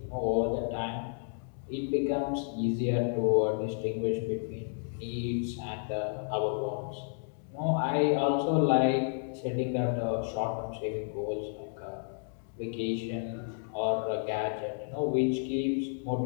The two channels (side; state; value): right; silent; digital silence